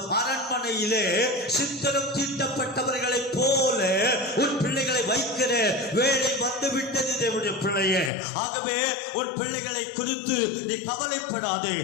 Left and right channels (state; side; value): drops out; right; at 8.1 s